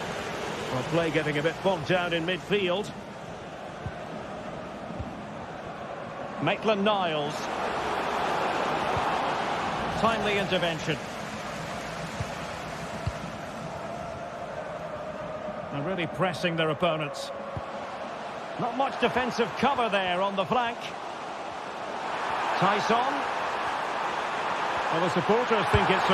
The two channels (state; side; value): identical; both; correlation 1.00